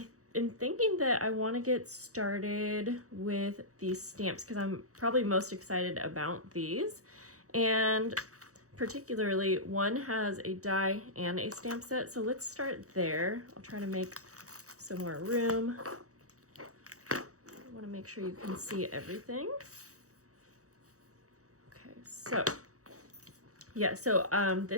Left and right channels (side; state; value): left; late; 0.65 ms